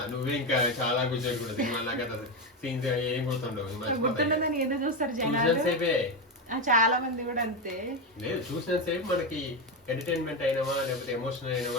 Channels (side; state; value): both; normal; correlation 0.12